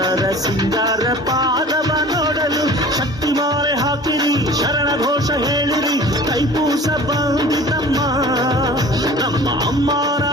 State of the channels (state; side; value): normal; both; correlation 0.43